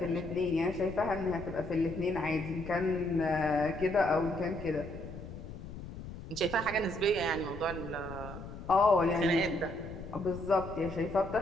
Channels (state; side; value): noise; left; rumble, 11 dB below the sound